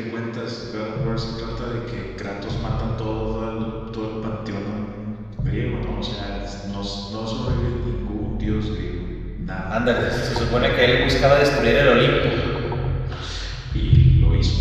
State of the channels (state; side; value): identical; both; correlation 1.00